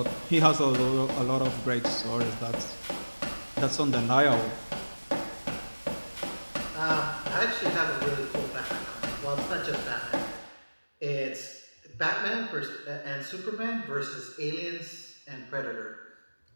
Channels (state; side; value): inverted; both; correlation -1.00